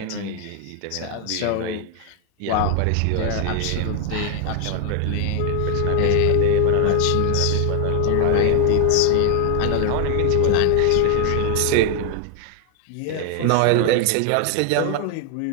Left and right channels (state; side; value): different; both; correlation 0.00